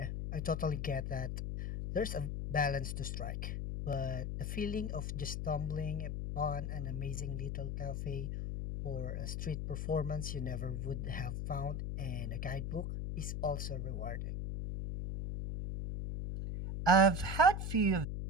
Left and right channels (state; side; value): noise; left; hum, 2 dB below the sound